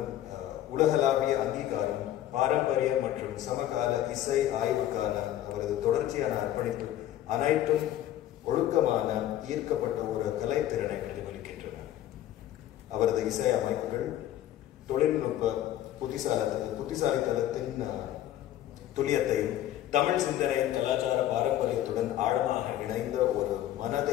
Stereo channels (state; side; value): quieter; right; 12.6 dB